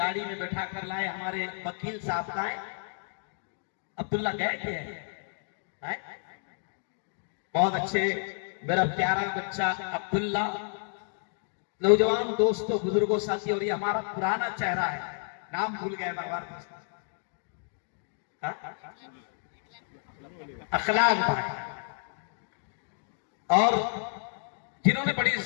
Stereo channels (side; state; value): right; silent; digital silence